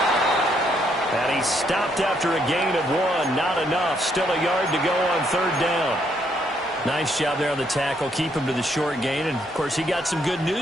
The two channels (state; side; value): normal; both; correlation 0.72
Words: And he stopped after a gain of 1. Not enough. Still a yard to go on third down. Nice job there on the tackle. Keep him to the short gain. And, of course, he got some good